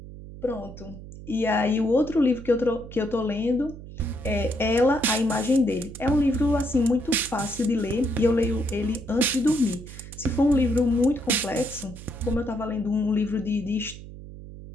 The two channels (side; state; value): right; noise; hum, 14 dB below the sound